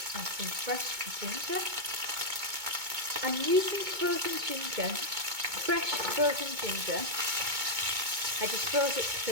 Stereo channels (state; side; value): late; left; 2.2 ms